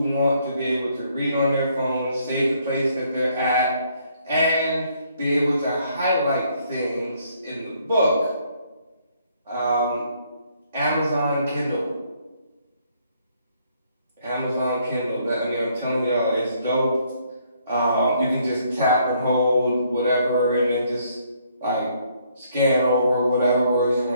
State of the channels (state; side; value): inverted; both; correlation -0.68